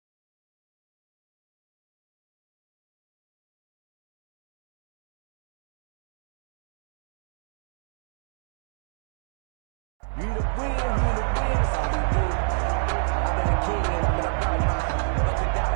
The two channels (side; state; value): left; silent; digital silence